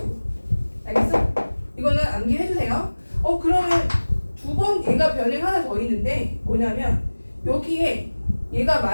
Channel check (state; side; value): inverted; both; correlation -1.00